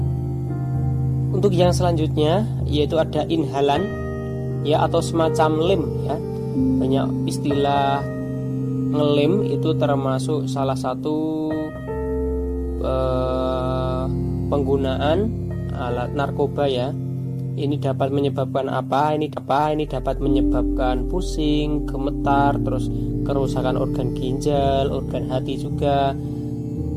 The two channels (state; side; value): identical; both; correlation 1.00